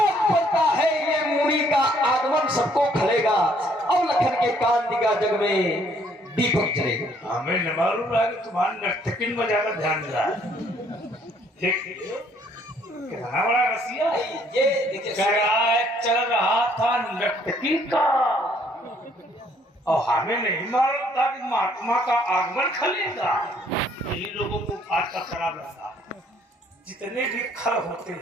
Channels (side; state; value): both; normal; correlation 0.64